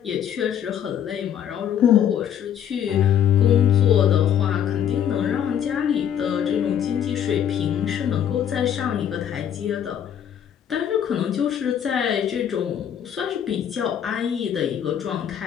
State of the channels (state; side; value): quieter; right; 9.4 dB